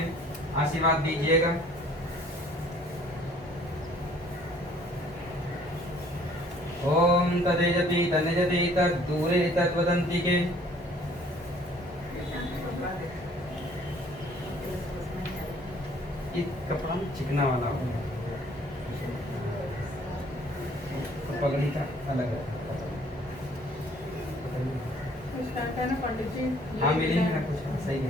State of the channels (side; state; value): both; normal; correlation 0.57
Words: आशीर्वाद दीजिएगा। ओम तदेजति तनेजति तद्दूरे तद्वदन्ति के एक कपड़ा चिकना वाला हो, पगड़ी का अलग है। हाँ मिली ना कुछ सही